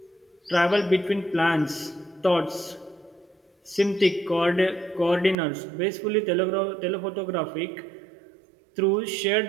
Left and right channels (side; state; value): left; drops out; at 5.4 s